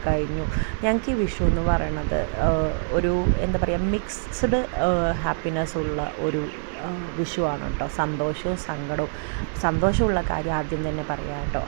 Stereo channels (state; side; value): silent; left; digital silence